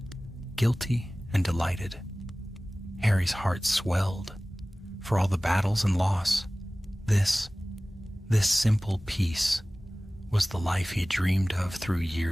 guilty and delighted. Harry's heart swelled. For all the battles and loss, this simple peace was the life he had dreamed of through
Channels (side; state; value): both; normal; correlation 0.98